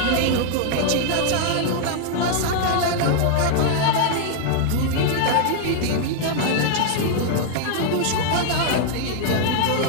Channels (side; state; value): both; different; correlation 0.00